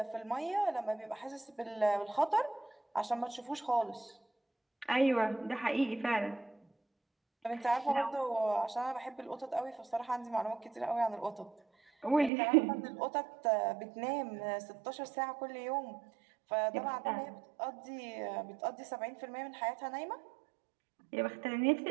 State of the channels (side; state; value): left; drops out; at 12.3 s